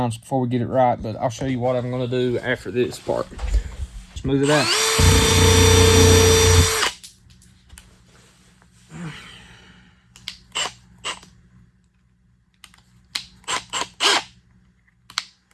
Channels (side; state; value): both; identical; correlation 1.00